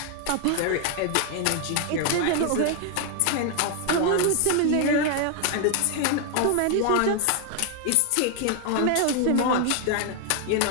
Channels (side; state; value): both; different; correlation 0.00